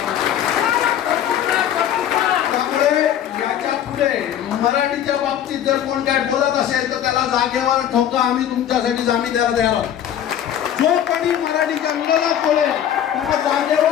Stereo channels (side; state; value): right; quieter; 10.3 dB